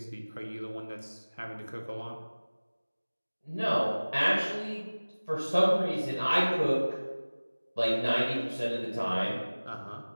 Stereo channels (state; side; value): inverted; both; correlation -1.00